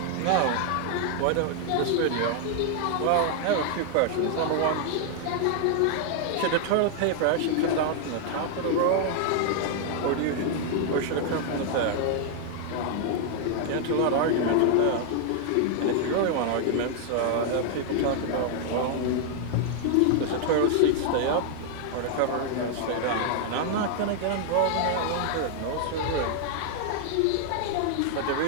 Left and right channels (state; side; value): different; both; correlation 0.00